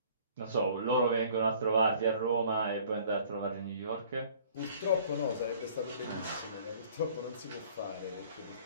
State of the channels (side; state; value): both; inverted; correlation -0.53